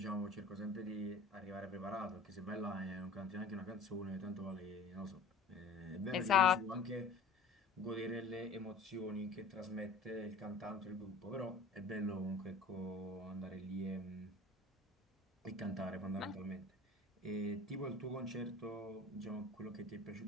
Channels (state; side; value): quieter; right; 3.6 dB